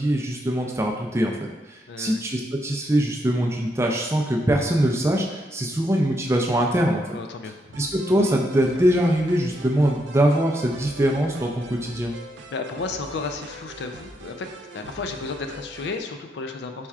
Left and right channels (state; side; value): normal; both; correlation 0.78